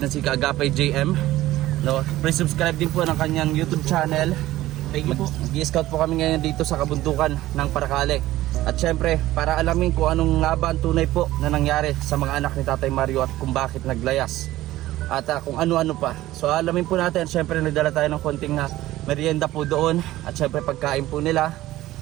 si Kaagapay JM, no? Please subscribe din po ng kanyang YouTube channel. Mag-i-scout po kami ngayon dito sa kabundukan ng Paracale. At syempre para alamin kung anong nga ba ang tunay po na nangyari sa mga anak ni Tatay Mario at kung bakit naglayas at kung ano-ano pa. So alamin po natin. Syempre nagdala tayo ng konting merienda po doon at syempre pagkain po nila.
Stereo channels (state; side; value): quieter; left; 15.8 dB